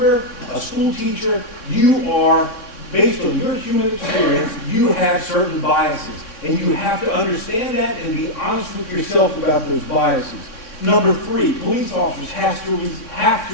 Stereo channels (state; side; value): late; right; 3.6 ms